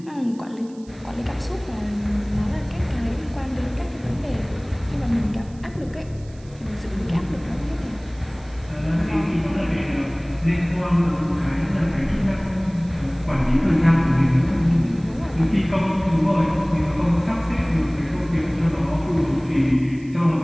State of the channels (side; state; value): right; noise; hiss, 27 dB below the sound